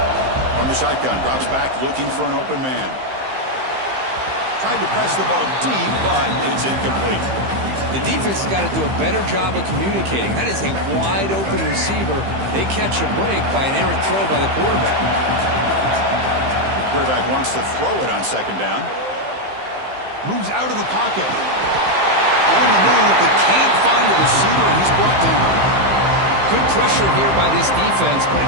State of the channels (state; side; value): late; left; 15 ms